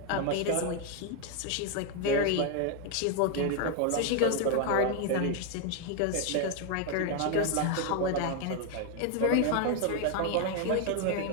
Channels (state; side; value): different; both; correlation 0.01